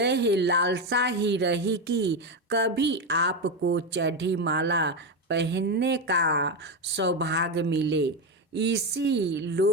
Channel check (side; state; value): both; normal; correlation 0.13